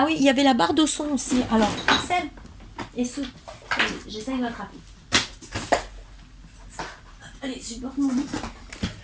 oui, il y avait la barre de son aussi. Alors, celle et ce. J'essaye de l'attraper. Allez, je porte mon bout.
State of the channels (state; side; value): identical; both; correlation 1.00